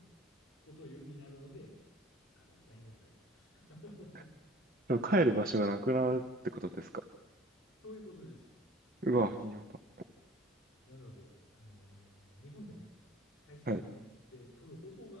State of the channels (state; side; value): normal; both; correlation 0.47